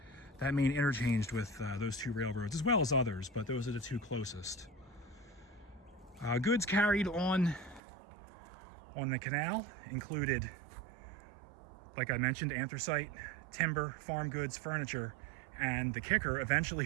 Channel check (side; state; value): left; drops out; at 7.8 s